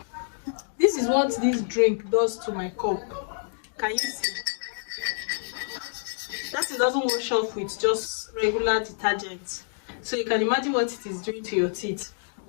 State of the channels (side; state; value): right; silent; digital silence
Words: This is what this drink does to my cup. Can you see? That it doesn't wash off with just regular detergent. So you can imagine what it is doing to your teeth.